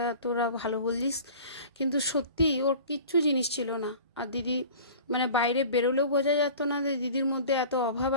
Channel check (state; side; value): inverted; both; correlation -0.42